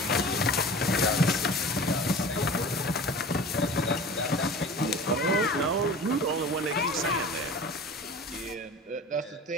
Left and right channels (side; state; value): both; normal; correlation 0.38